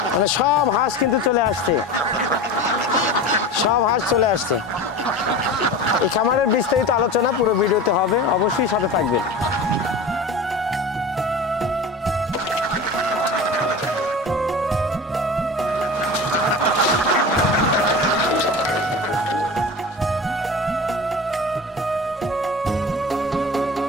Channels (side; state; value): both; normal; correlation 0.32